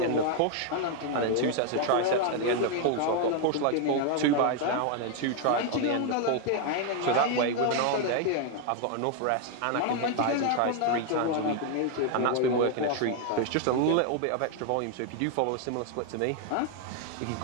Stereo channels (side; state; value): both; different; correlation 0.01